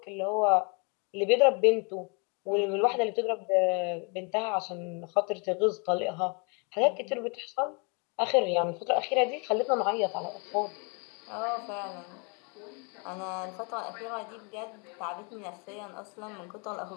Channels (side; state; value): right; quieter; 34.4 dB